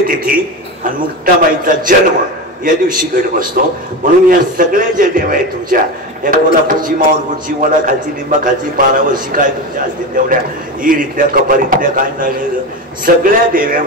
आणि मुक्ताबाईचा जन्म या दिवशी घट बसतो म्हणून या सगळ्या ज्या देव आहेत तुमच्या या कोल्हापूरची माऊरपूरची वडा खालची लिंबा खालची पारावरची काय तुमच्या असतील तेवढ्या ईरीतल्या कपारीतल्या काय नाही सगळ्या देव्या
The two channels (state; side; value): normal; both; correlation 0.22